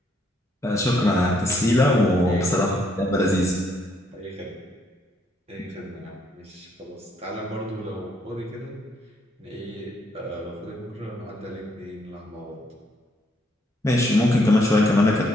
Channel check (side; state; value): both; normal; correlation 0.71